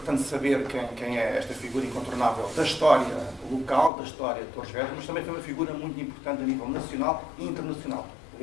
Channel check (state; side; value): drops out; right; at 3.9 s